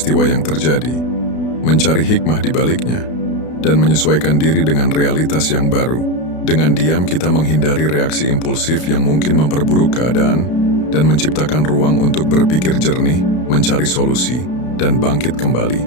yang terjadi, mencari hikmah di baliknya, dan menyesuaikan diri dengan realitas yang baru. Dengan diam kita menghindari reaksi impulsif yang mungkin memperburuk keadaan, dan menciptakan ruang untuk berpikir jernih, mencari solusi, dan bangkit kembali.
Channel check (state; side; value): late; right; 32 ms